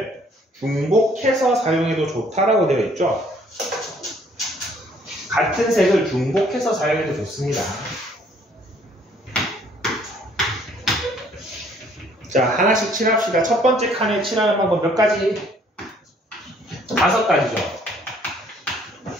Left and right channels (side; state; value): both; normal; correlation 0.62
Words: 중복해서 사용해도 좋다라고 되어 있죠. 같은 색을 중복해서 사용해도 좋습니다. 자, 하나씩 칠합시다. 첫 번째 칸에 칠하는 방법 몇 가지? 5가지죠.